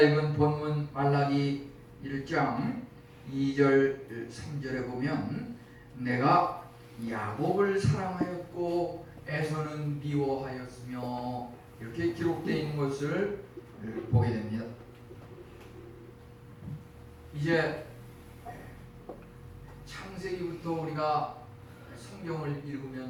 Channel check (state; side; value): identical; both; correlation 1.00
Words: 본문 말라기 1장 2절 3절에 보면 내가 야곱을 사랑하였고 에서는 미워하였으며 이렇게 기록되어 있는 것을 보게 됩니다. 이제 창세기부터 우리가 성경을